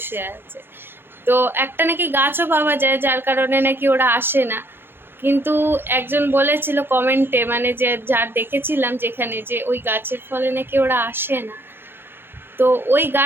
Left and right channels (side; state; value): left; late; 0.10 ms